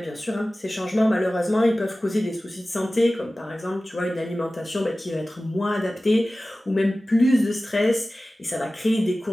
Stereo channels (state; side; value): normal; both; correlation 0.96